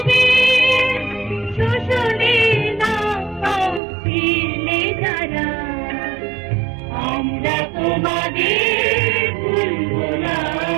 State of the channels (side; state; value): left; drops out; at 3.8 s